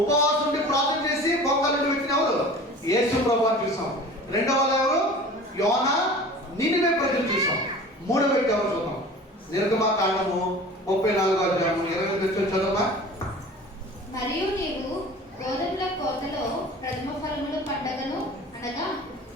ఉండి ప్రార్థన చేసి బొక్కలు వ్యక్తిని ఎవరు? యేసు ప్రభువుని చూసాం. రెండవ ఎవరు? యోనా, నినివే ప్రజలు చూసాం. మూడవ వ్యక్తి ఎవరు చూద్దాం? నిర్గమకాండము 34వ అధ్యాయము 28వ వచనం చదవమా. మరియు నీవు గోధుమల కోతలో ప్రథమ ఫలముల పండగను అనగా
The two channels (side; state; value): both; normal; correlation 0.41